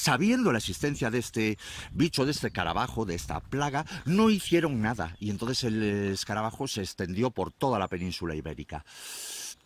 la existencia de este bicho, de este escarabajo, de esta plaga, no hicieron nada. Y entonces el escarabajo se extendió por toda la península ibérica.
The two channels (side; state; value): both; identical; correlation 1.00